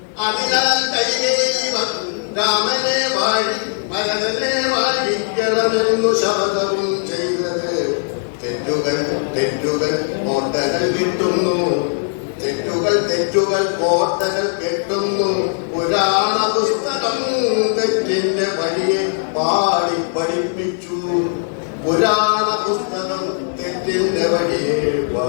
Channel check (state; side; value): silent; right; digital silence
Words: അതിനാൽ കൈകേയി രാമനെ ഭരതനെ വാഴിക്കണമെന്നു ശപഥവും ചെയ്തത്. തെറ്റുകൾ കോട്ടകൾ കിട്ടുന്നു. തെറ്റുകൾ കോട്ടകൾ കെട്ടുന്നു. പുരാണ പുസ്തകം തെറ്റിന്റെ വഴിയെ പാടി പഠിപ്പിച്ചു. പുരാണ പുസ്തകം തെറ്റിന്റെ വഴിയെ